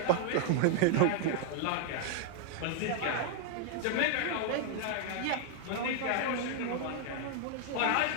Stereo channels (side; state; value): both; different; correlation 0.00